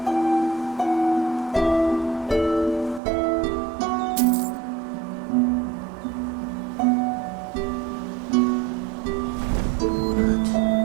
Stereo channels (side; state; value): left; drops out; at 3.0 s